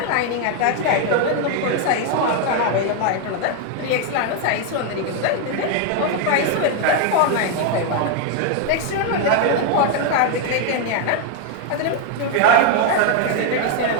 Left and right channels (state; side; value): different; both; correlation 0.01